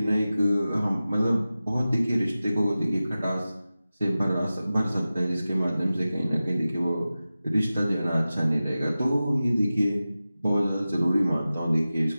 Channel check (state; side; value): inverted; both; correlation -0.95